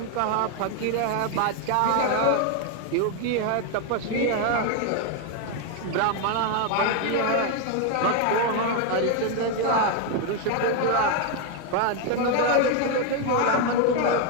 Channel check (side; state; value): both; different; correlation 0.01